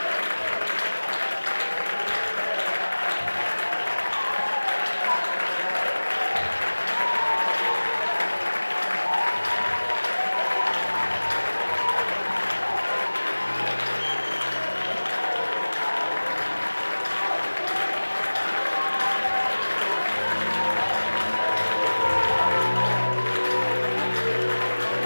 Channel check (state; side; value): inverted; both; correlation -1.00